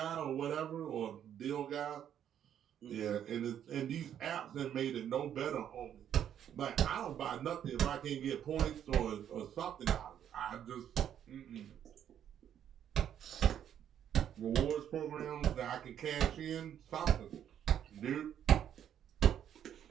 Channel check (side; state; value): left; quieter; 9.8 dB